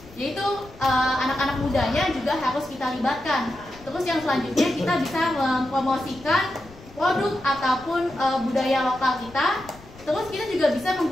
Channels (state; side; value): noise; left; rumble, 22 dB below the sound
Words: Yaitu anak-anak mudanya juga harus kita libatkan. Terus yang selanjutnya kita bisa mempromosikan produk ataupun budaya lokal kita. Terus kita juga bisa